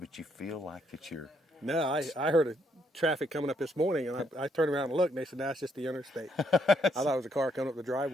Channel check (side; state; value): both; normal; correlation 0.73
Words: you feel like it's your... No, I heard a traffic coming up this morning, and I turned around and looked, and they said, that's just the interstate. I thought it was a car coming up the